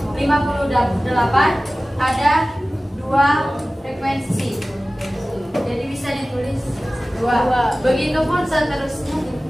58 ada 2 frekuensi. Jadi bisa ditulis 2. Begitupun seterusnya.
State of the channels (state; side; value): normal; both; correlation 0.97